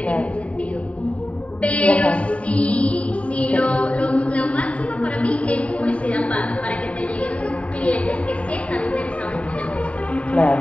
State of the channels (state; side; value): late; right; 0.065 ms